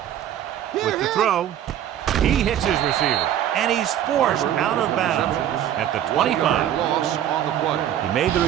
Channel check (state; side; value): quieter; left; 11.0 dB